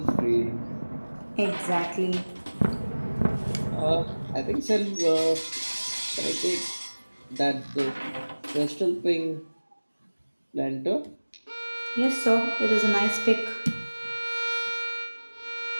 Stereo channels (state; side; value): inverted; both; correlation -1.00